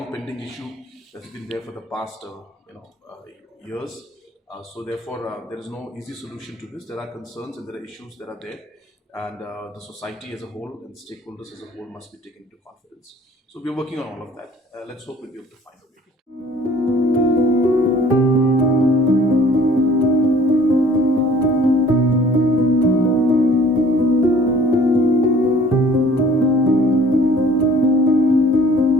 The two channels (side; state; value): both; normal; correlation 0.53